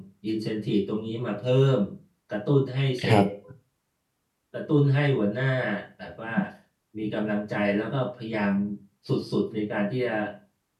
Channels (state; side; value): identical; both; correlation 1.00